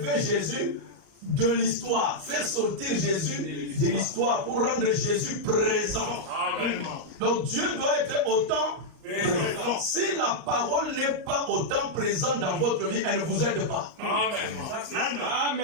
Jésus de l'histoire, faire sortir Jésus de l'histoire pour rendre Jésus présent. Amen. Donc Dieu doit être autant présent. Si la parole n'est pas autant présente dans votre vie, elle ne vous aide pas. Amen.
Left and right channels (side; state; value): left; late; 38 ms